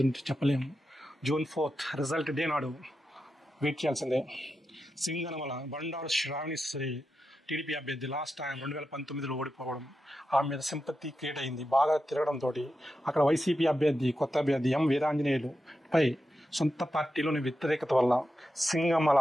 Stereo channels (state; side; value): normal; both; correlation 0.89